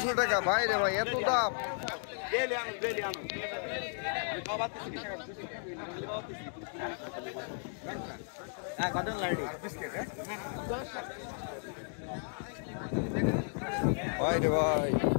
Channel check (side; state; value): right; silent; 55 dB below the other